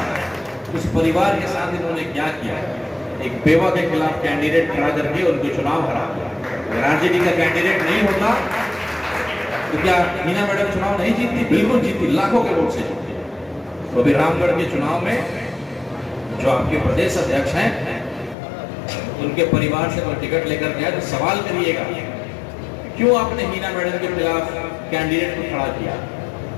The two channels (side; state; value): right; drops out; at 18.4 s